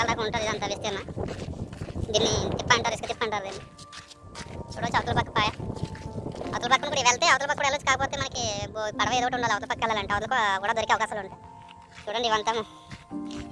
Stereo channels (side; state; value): both; identical; correlation 1.00